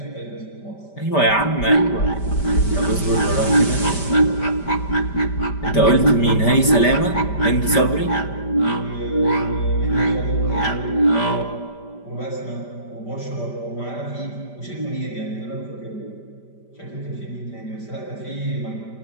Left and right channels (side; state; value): right; late; 5.1 ms